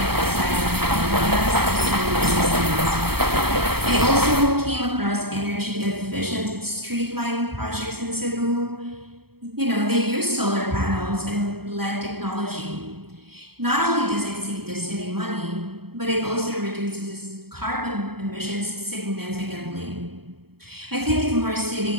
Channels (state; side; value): late; left; 0.96 ms